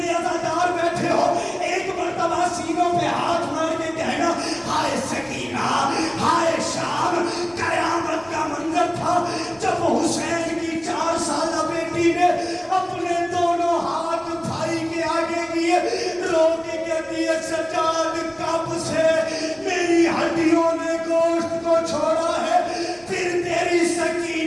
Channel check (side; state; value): right; noise; rumble, 29 dB below the sound